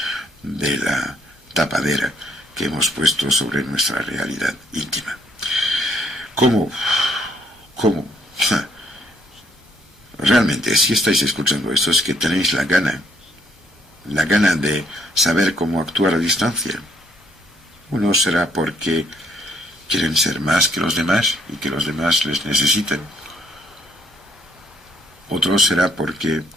de la tapadera que hemos puesto sobre nuestra realidad íntima. ¿Cómo? Realmente, si estáis escuchando esto, es que tenéis la gana la gana de saber cómo actuar a distancia. Uno será porque quieren ser más que los demás y que los demás les necesiten. Otro será porque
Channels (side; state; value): both; normal; correlation 0.69